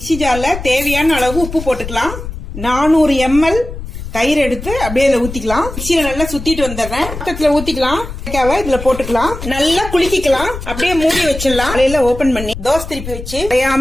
ஜார்ல தேவையான அளவு உப்பு போட்டுக்கலாம். 400 ml தயிர் எடுத்து அப்படியே இதுல ஊத்திக்கலாம். மிக்ஸியில நல்லா சுத்திட்டு வந்துடுறேன். பக்கத்துல ஊத்திக்கலாம். வெண்டைக்காவை இதுல போட்டுக்கலாம். நல்லா குலுக்கிக்கலாம். அப்படியே மூடி வச்சிடலாம். காலையில ஓபன் பண்ணி தோசை திருப்பி வச்சு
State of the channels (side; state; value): left; noise; rumble, 9 dB below the sound